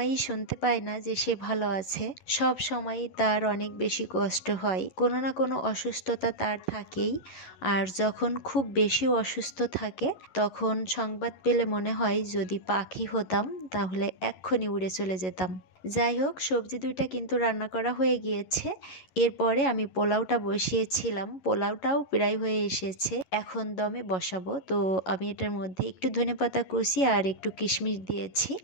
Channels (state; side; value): late; right; 11 ms